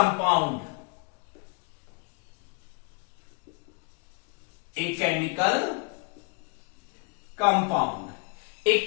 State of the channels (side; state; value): right; quieter; 33.7 dB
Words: एक केमिकल कंपाउंड,